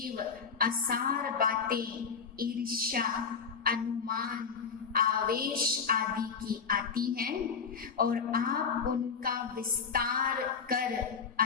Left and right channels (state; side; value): quieter; right; 5.9 dB